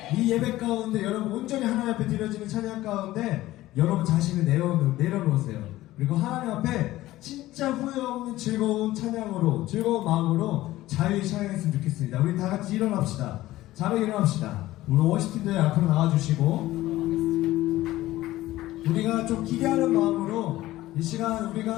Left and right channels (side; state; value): right; quieter; 16.2 dB